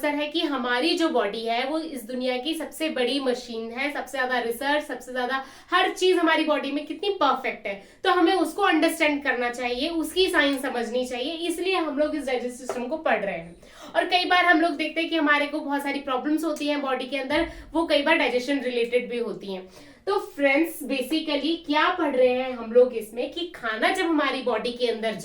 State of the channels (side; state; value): both; identical; correlation 1.00